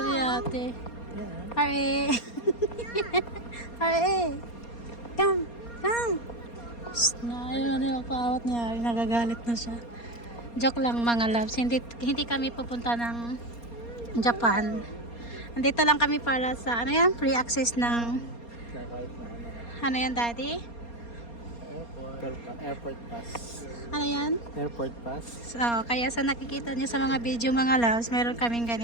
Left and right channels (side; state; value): right; late; 4.3 ms